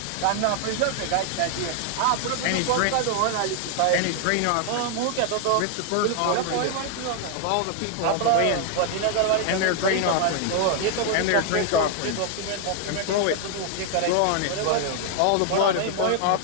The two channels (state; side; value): different; both; correlation 0.00